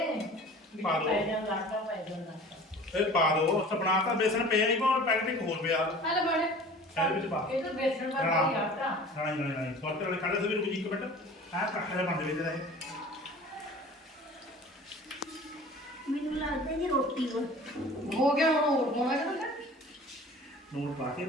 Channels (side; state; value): both; normal; correlation 0.43